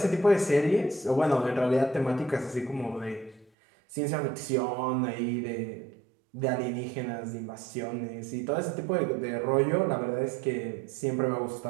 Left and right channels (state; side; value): drops out; left; at 3.5 s